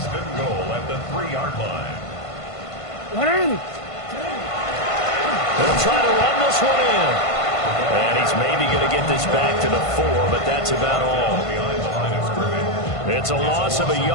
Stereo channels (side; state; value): right; late; 1.5 ms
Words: and goal at the 3-yard line. They'll try to run this one in. And he's maybe going to get this back to the 4, but that's about all. It's a loss of a